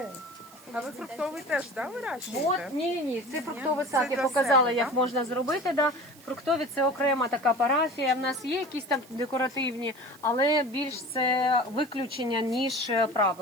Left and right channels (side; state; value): right; noise; hiss, 24 dB below the sound